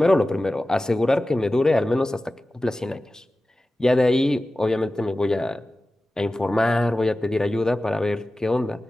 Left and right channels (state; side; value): normal; both; correlation 0.96